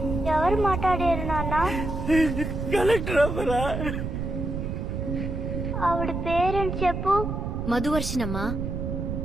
ఎవరు మాట్లాడారు నాన్న? కలెక్టర్ అమ్మరా. ఆవిడ పేరెంట్ చెప్పు. మధువర్షినమ్మా.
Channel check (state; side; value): noise; right; rumble, 3 dB below the sound